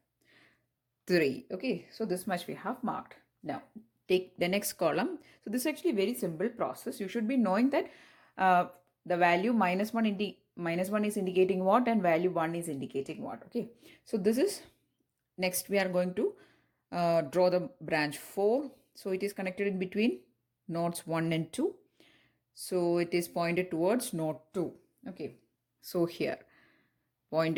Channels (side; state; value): both; identical; correlation 1.00